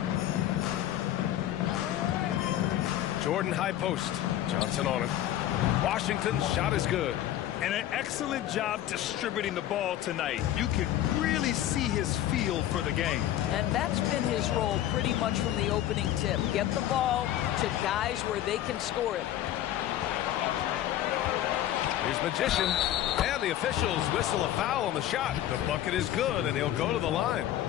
Jordan high post. Johnson on him. Washington's shot is good. And an excellent job distributing the ball tonight. You can really see his feel for the game. And that's been his role pretty much from the opening tip. Get the ball to guys where they can score it. Here's Magician. And the officials whistle a foul on the shot. The bucket is good, and he'll go to the line.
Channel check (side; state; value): right; quieter; 12.6 dB